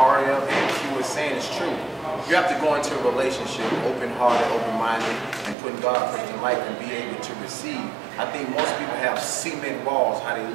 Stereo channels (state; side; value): drops out; left; at 5.6 s